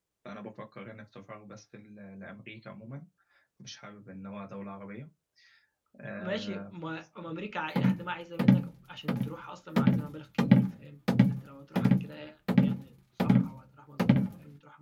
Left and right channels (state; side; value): identical; both; correlation 1.00